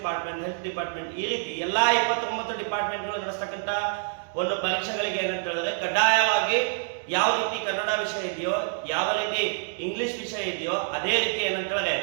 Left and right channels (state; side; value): silent; left; 60 dB below the other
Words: ಹೆಲ್ತ್ ಡಿಪಾರ್ಟ್ಮೆಂಟ್, ಈ ರೀತಿ ಎಲ್ಲ 29 ಡಿಪಾರ್ಟ್ಮೆಂಟ್ಗಳು ನಡೆಸ್ತಕ್ಕಂಥ ಒಂದು ಪರೀಕ್ಷೆಗಳಿಗೆ ಏನಂತ ಹೇಳಿದ್ರೆ ಕಡ್ಡಾಯವಾಗಿ ಯಾವ ರೀತಿ ಕನ್ನಡ ವಿಷಯ ಇದೆಯೋ, ಯಾವ ರೀತಿ ಇಂಗ್ಲಿಷ್ ವಿಷಯ ಇದೆಯೋ ಅದೇ ರೀತಿ ಏನಂತ ಹೇಳಿದ್ರೆ